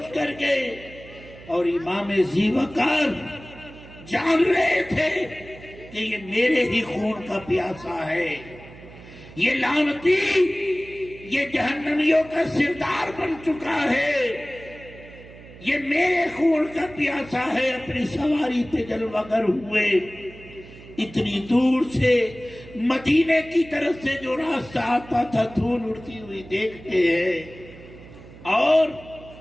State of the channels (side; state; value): right; noise; hum, 19 dB below the sound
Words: کر گئے، اور امام ذی وقار جان رہے تھے کہ یہ میرے ہی خون کا پیاسا ہے، یہ لعنتی یہ جہنمیوں کا سردار بن چکا ہے، یہ میرے خون کا پیاسا ہے، اپنی سواری پہ جلوہ گر ہوئے، اتنی دور سے مدینے کی طرف سے جو راستہ آتا تھا دھول اڑتی ہوئی دیکھتے ہیں اور